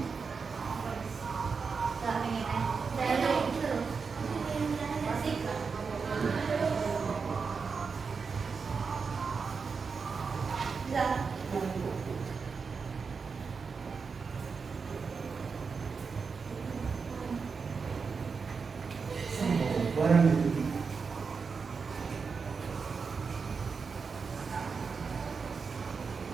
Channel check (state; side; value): quieter; left; 5.2 dB